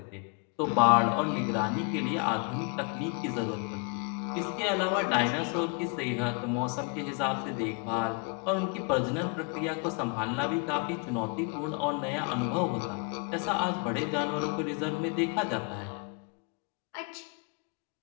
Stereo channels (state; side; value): quieter; right; 33.5 dB